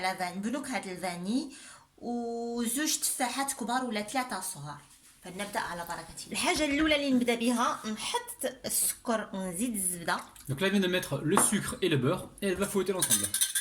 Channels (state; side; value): identical; both; correlation 1.00